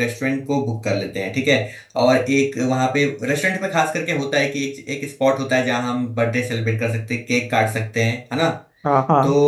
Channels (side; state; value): both; identical; correlation 1.00